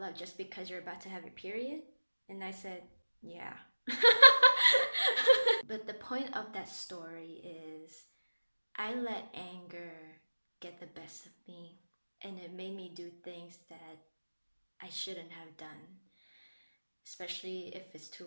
up just because you're about to have your period? And I said, yeah. But the point of that story is I let anger get the best of me, and it made me do things that I shouldn't have done, especially if it's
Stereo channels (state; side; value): inverted; both; correlation -1.00